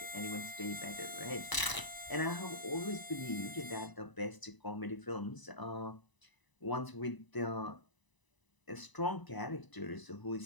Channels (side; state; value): right; late; 1.0 ms